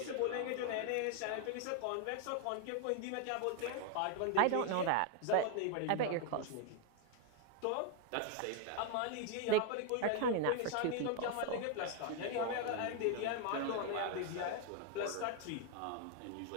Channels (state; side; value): different; both; correlation 0.01